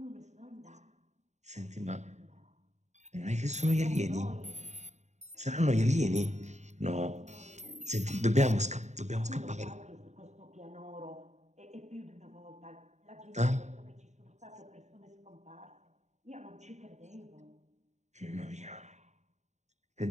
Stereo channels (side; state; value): left; late; 0.34 ms